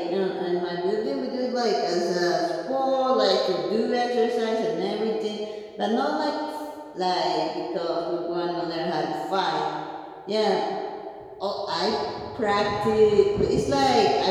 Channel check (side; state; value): both; identical; correlation 1.00